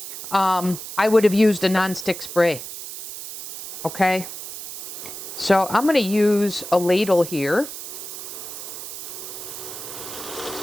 I would have used a nonstick spray. Okay? So I'm going to use a ladle here.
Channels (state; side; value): noise; right; hiss, 10 dB below the sound